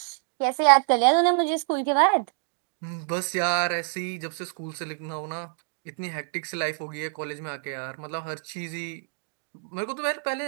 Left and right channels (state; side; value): silent; left; digital silence